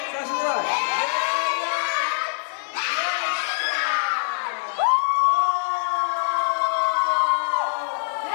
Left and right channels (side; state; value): right; silent; digital silence